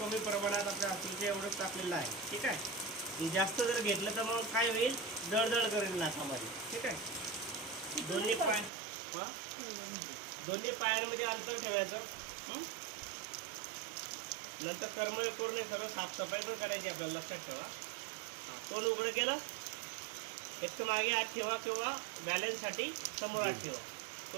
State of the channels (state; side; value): drops out; left; at 8.7 s